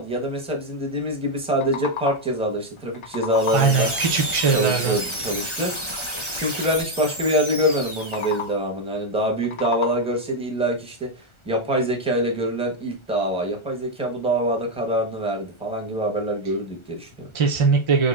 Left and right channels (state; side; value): late; right; 1.4 ms